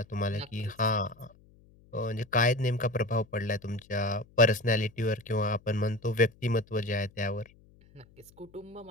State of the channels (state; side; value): noise; left; hum, 27 dB below the sound